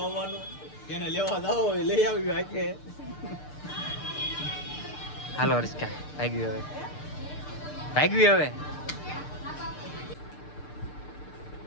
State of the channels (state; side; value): late; right; 6.7 ms